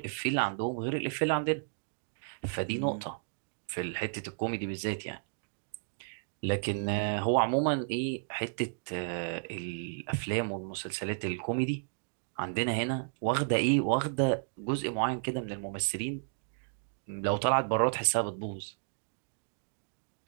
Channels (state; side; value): silent; left; digital silence